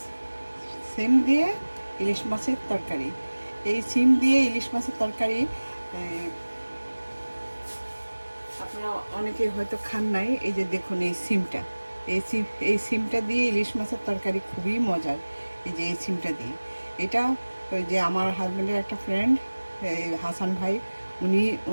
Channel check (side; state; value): both; inverted; correlation -1.00